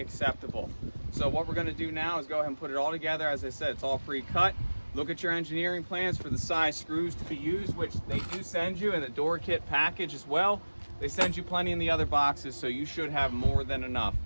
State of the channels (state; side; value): inverted; both; correlation -1.00